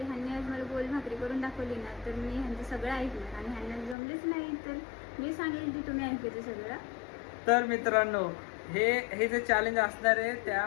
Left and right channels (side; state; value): right; drops out; at 4.0 s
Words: ह्यांनी आज मला गोल भाकरी करून दाखवली ना, तर मी ह्यांचं सगळं ऐकलं आणि ह्यांना जमलेच नाही तर मी सांगेल की तुम्ही ऐकायचं सगळं. तर मित्रांनो, हे जे चॅलेंज असणार आहे